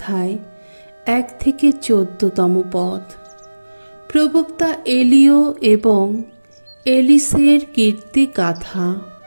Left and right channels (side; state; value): both; inverted; correlation -1.00